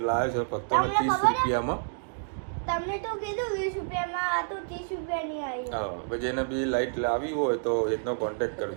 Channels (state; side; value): silent; left; digital silence